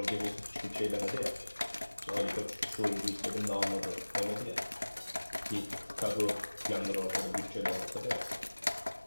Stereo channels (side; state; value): both; inverted; correlation -1.00